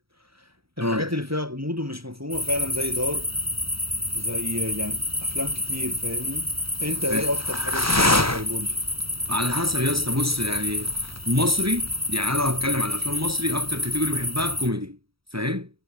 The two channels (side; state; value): left; late; 0.76 ms